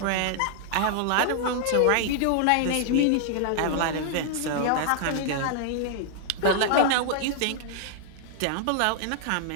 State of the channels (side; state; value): both; different; correlation -0.01